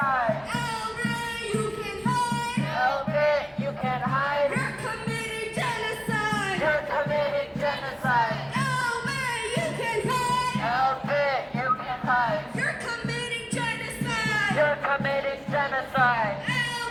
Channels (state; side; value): identical; both; correlation 1.00